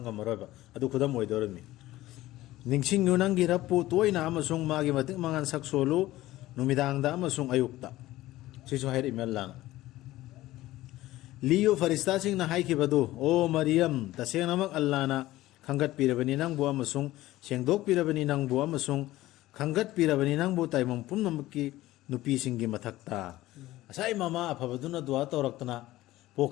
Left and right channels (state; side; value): quieter; right; 16.5 dB